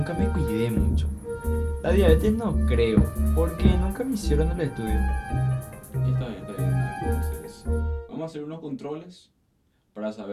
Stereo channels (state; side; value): identical; both; correlation 1.00